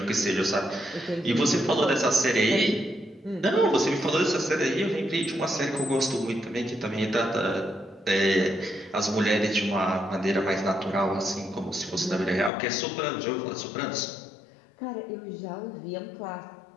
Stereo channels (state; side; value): drops out; right; at 12.5 s